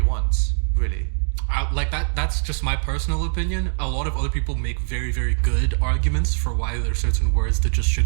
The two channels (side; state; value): left; silent; digital silence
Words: want, really. Like that's just my personal opinion. A lot of other people make very, very good arguments for why there are certain words that just